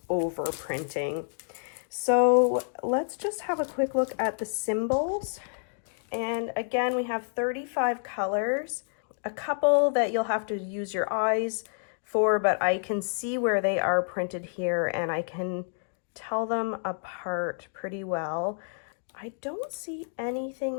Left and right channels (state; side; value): silent; right; digital silence